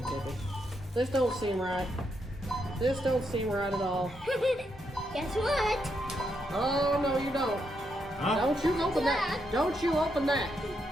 ticket. This don't seem right. This don't seem right at all. Guess what? Oh, no, you don't. Huh? Don't you open that. Don't you open that.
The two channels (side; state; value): both; normal; correlation 0.80